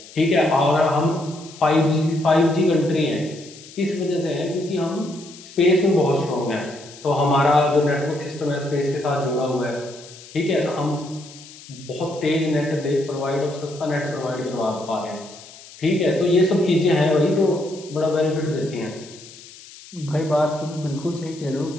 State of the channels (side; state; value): left; noise; hiss, 19 dB below the sound